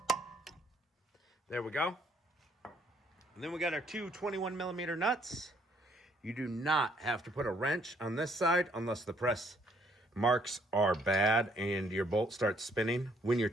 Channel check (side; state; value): both; normal; correlation 0.67